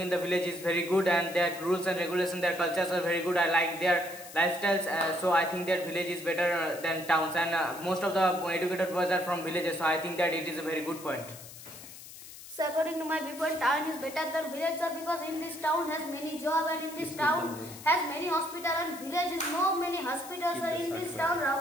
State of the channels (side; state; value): left; noise; hiss, 15 dB below the sound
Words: the village is very good, and their rules and regulations, their cultures are very good. I like their lifestyles, so I think that village is better than towns, and most of the educated boys are from villages, so I think that it is a very good point. So according to my viewpoint, town is better than village, sir, because in this town has many job, and in this town has many hospital, and village is no many hospitals are in this town.